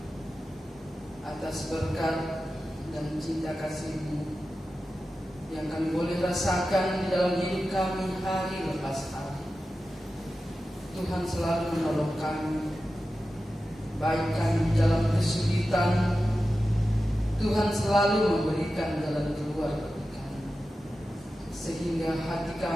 atas berkat dan cinta kasih-Mu yang kami boleh rasakan di dalam hidup kami hari lepas hari. Tuhan selalu menolong kami, baik kami di dalam kesulitan. Tuhan selalu memberikan jalan keluar bagi kami, sehingga hati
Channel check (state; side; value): normal; both; correlation 0.93